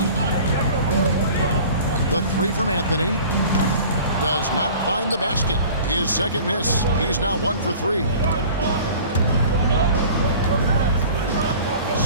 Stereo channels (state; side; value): inverted; both; correlation -0.44